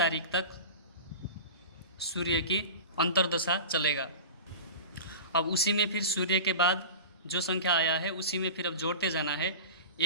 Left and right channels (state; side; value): inverted; both; correlation -0.33